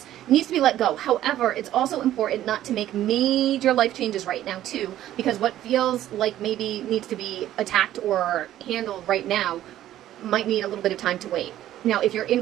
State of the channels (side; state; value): left; quieter; 12.9 dB